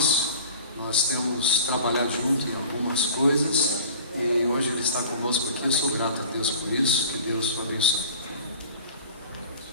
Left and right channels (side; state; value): both; inverted; correlation -0.43